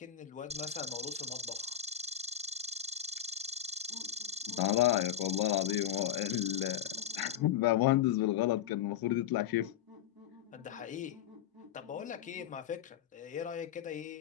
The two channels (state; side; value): quieter; right; 10.4 dB